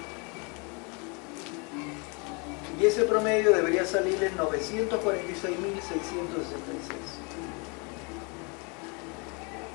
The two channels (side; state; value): right; quieter; 32.5 dB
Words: Y ese promedio debería salir en 946.666.